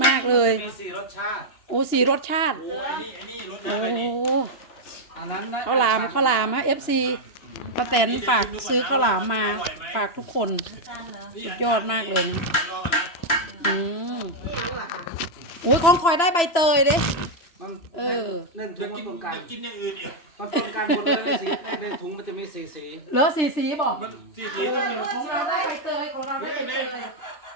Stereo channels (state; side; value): late; right; 3.0 ms